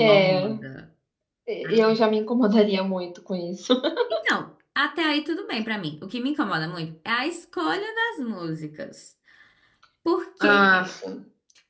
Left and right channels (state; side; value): identical; both; correlation 1.00